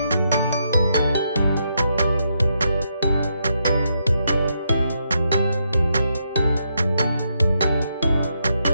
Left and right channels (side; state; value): both; inverted; correlation -0.80